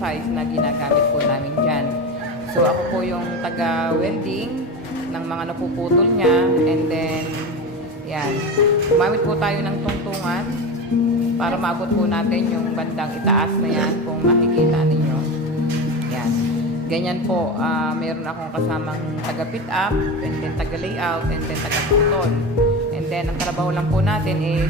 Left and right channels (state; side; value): normal; both; correlation 0.24